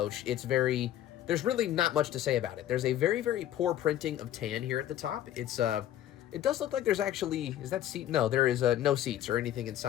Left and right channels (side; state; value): right; quieter; 12.0 dB